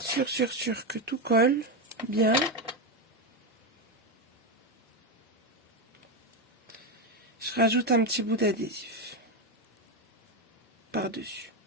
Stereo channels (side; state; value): both; normal; correlation 0.09